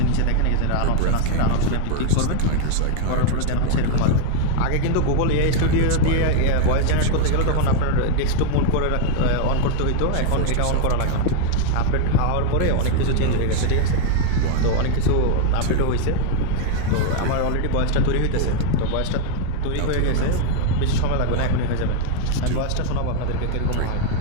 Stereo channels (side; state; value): both; different; correlation 0.00